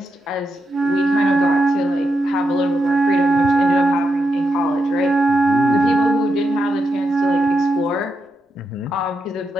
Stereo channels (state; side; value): normal; both; correlation 0.84